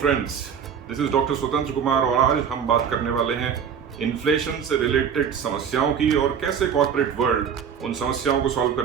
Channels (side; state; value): left; quieter; 7.5 dB